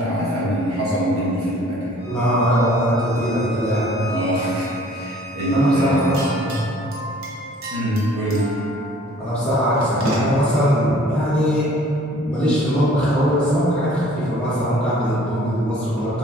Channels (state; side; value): normal; both; correlation 0.54